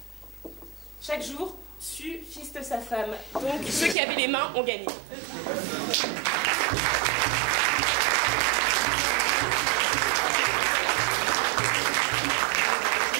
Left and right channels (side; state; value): left; drops out; at 4.0 s